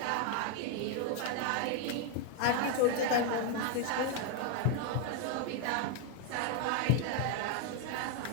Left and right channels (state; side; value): different; both; correlation 0.01